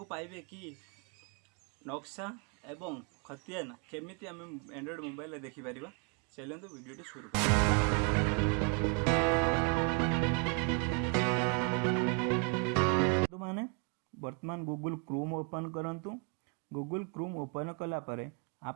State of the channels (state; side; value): quieter; left; 34.4 dB